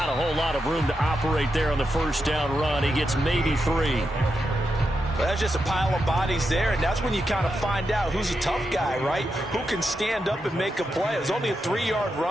a whole lot of room to operate there on the first down run. He gets maybe 3. Well, that's just a pile of bodies there, and that's when you kind of find out who's a tough guy, right? Who can stand up and make a play. It was only a 3-yard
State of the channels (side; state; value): both; normal; correlation 0.86